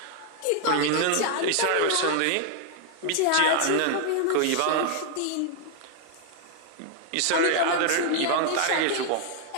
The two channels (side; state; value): both; different; correlation 0.00